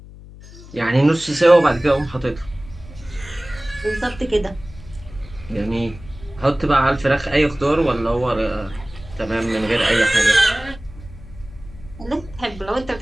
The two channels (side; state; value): left; noise; hum, 18 dB below the sound